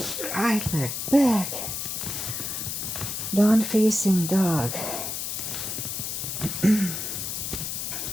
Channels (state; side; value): noise; left; hiss, 4 dB below the sound